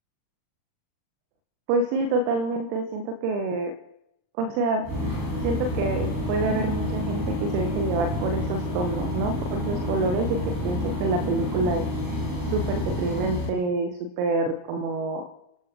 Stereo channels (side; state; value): left; late; 39 ms